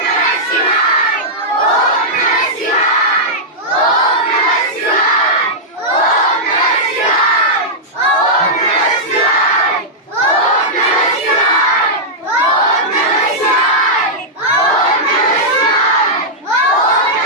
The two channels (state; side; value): normal; both; correlation -0.09